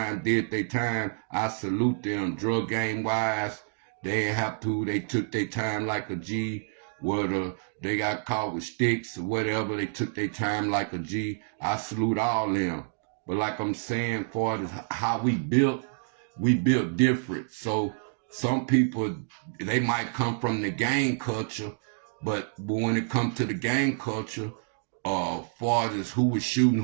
did their time, I salute them. Drug game wise, they ain't have to. They took their time like a G. Whether they got caught with sticks or whatever, they took their time like a G. I salute all them. But like I'm saying, far as how we built different. So some people, they might come from the gang culture, but when it comes to the gang culture, far as who was shooting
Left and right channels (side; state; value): left; silent; digital silence